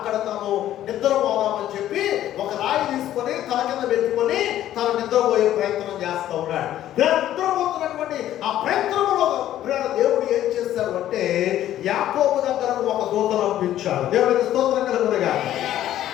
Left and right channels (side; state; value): right; quieter; 12.5 dB